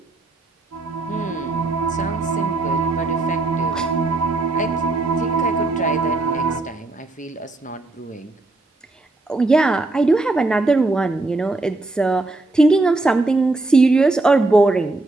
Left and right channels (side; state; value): left; quieter; 3.1 dB